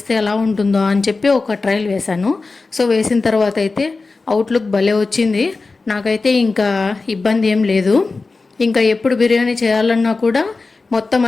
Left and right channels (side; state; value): right; quieter; 3.8 dB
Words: ఎలా ఉంటుందో అని చెప్పి ఒక ట్రయల్ వేశాను. సో వేసిన తర్వాత అయితే అవుట్లుక్ భలే వచ్చింది. నాకైతే ఇంకా ఇబ్బంది ఏం లేదు. ఇంకా ఎప్పుడు బిర్యానీ చేయాలన్నా కూడా మొత్తం